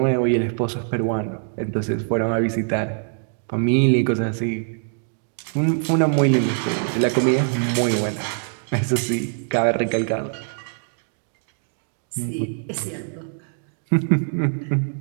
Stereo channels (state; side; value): silent; left; digital silence